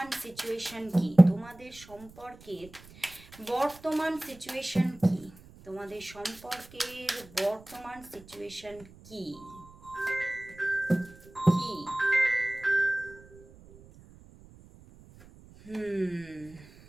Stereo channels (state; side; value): noise; right; rumble, 22 dB below the sound